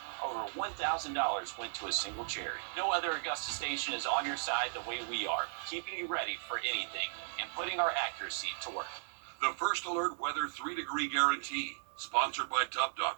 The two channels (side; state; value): left; silent; digital silence